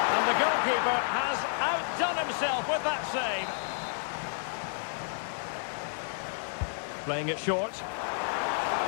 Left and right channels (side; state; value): right; silent; digital silence